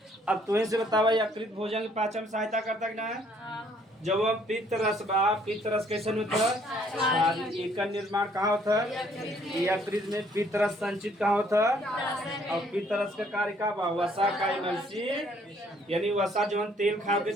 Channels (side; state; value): both; normal; correlation 0.64